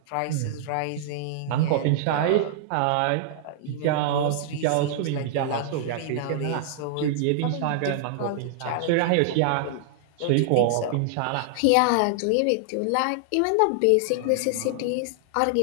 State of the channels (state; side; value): different; both; correlation -0.01